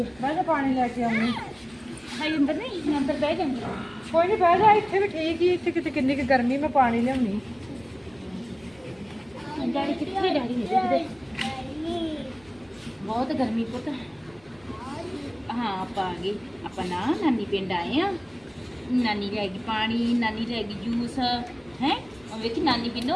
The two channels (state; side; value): noise; right; rumble, 29 dB below the sound